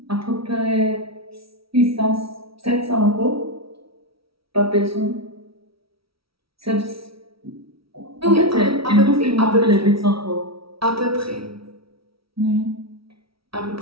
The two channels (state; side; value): late; left; 0.75 ms